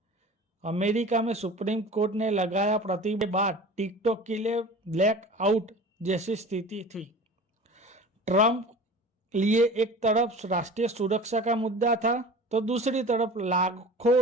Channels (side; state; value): both; normal; correlation 0.39